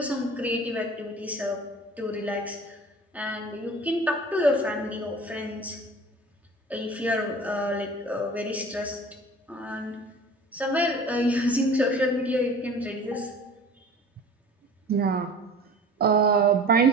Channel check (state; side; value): normal; both; correlation 0.42